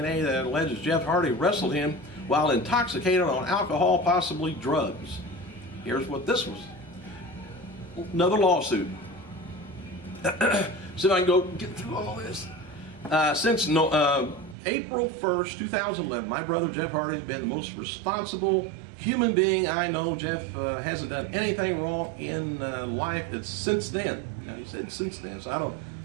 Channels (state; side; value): drops out; left; at 14.6 s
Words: that alleges Jeff Hardy wrestled him while intoxicated on alcohol, possibly drugs. Here's what this was. Another lawsuit. See if I can go get through all this. Since April 1st, 2011, my brother Jeff Hardy has been the most responsible human being I know. Jeff hasn't done anything wrong in life. It's since then. Now, he said since then, so I don't,